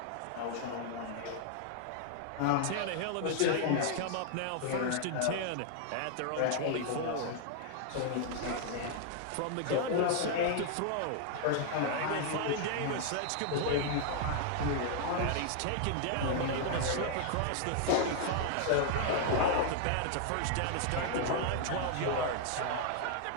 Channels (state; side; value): different; both; correlation 0.00